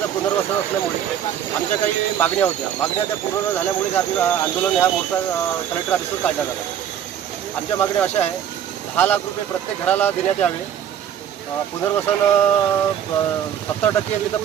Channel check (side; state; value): left; quieter; 9.5 dB